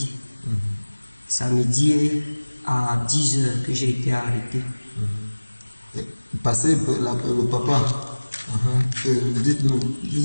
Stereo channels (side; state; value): both; inverted; correlation -1.00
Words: Samedi à 10h que j'ai été arrêté. Passez le papa. Dites-nous,